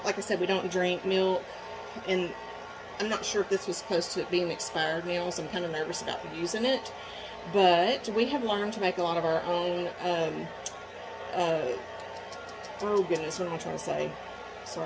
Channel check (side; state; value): both; identical; correlation 1.00